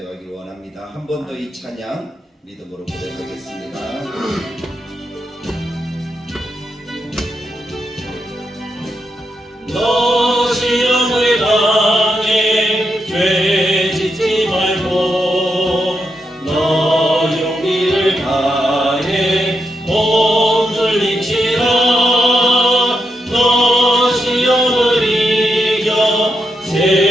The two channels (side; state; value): both; normal; correlation 0.84